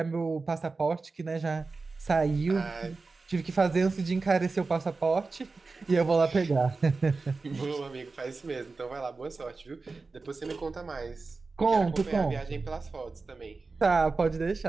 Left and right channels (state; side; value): quieter; left; 4.0 dB